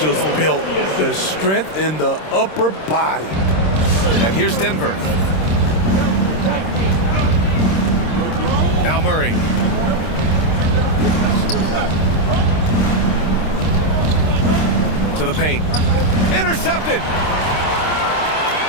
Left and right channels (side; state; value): right; late; 26 ms